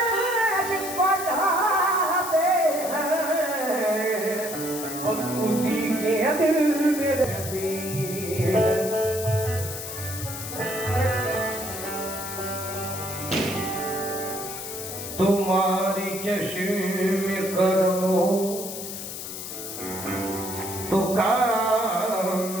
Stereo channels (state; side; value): noise; left; hiss, 8 dB below the sound